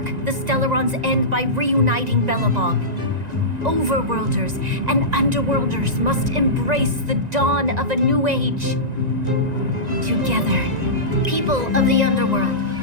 the Stellaron's end by reuniting Belobog. Overworlders and underworlders must embrace the dawn of a new age. Together, people of the underworld,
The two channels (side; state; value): left; late; 1.9 ms